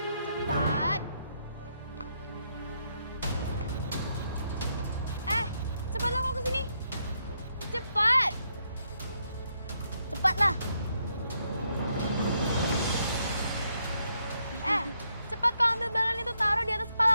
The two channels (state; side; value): inverted; both; correlation -0.78